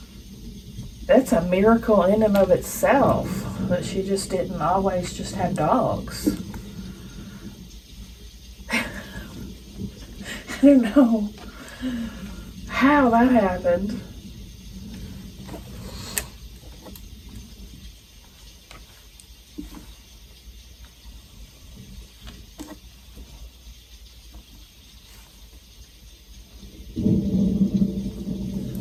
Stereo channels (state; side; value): identical; both; correlation 1.00